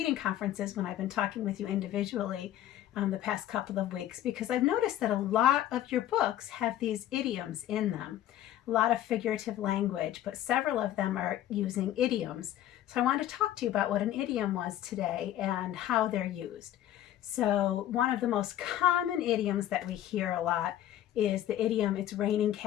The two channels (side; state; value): right; quieter; 12.5 dB